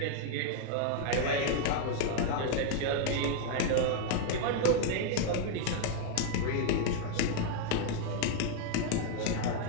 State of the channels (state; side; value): different; both; correlation 0.00